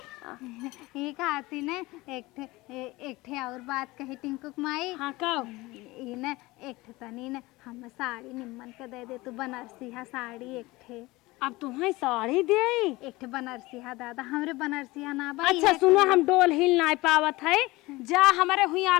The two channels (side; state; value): right; quieter; 20.8 dB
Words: ये कहती ने एक ठे और बात कही टिंकुक माई। हाँ कब ये न एक ठे तनी न हम साड़ी निम्मन के दे दे तू बनारसी हा साड़ी एक ठे। अब तुम्हें साड़ी दे। एक ठे बनारसिया दादा, हमरे बनारसिया ना बा। अच्छा सुनो, हम डोल हिल ना पावत है, जा हमारे हुई